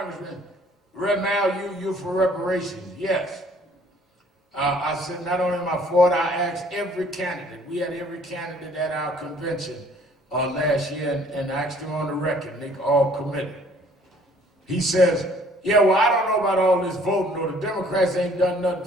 Red Mal, you for reparations. Yes. I said, not only am I for it, I asked every candidate. We had every candidate at our convention last year and asked them on the record. They all committed. He says, yeah, well, I don't know about all this voting, or the Democrats ain't done nothing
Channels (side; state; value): both; normal; correlation 0.58